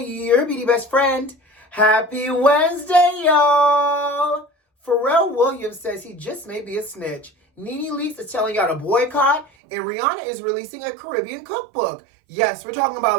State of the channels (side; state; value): left; drops out; at 9.5 s